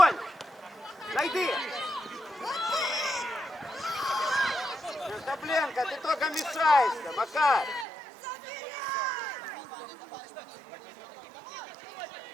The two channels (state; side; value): drops out; left; at 7.9 s